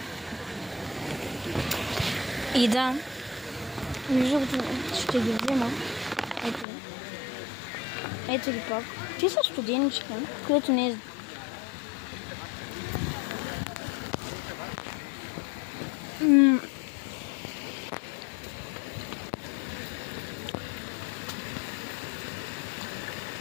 И да, между другото ще ги взема. Ето ги пак. Те са студеничка, което не е...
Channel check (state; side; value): drops out; right; at 6.7 s